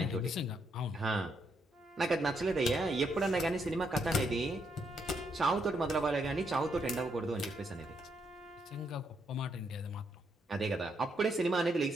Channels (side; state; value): both; normal; correlation 0.77